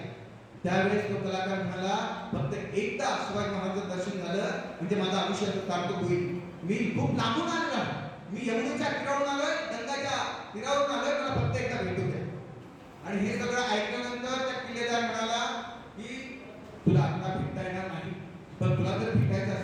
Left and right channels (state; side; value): identical; both; correlation 1.00